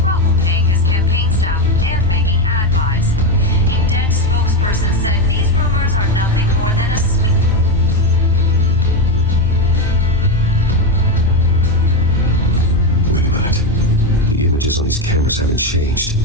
paying his campaign staff and making ad buys. A Dent spokesperson said these rumors are nothing more than a smear. Wait a minute. The images on these cameras haven't changed.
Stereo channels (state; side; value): normal; both; correlation 0.12